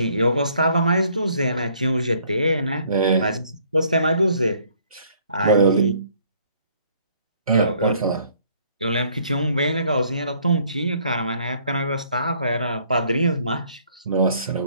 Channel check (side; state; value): both; inverted; correlation -0.62